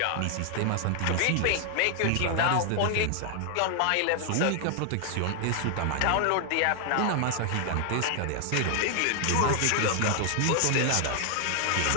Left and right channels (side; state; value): both; different; correlation 0.00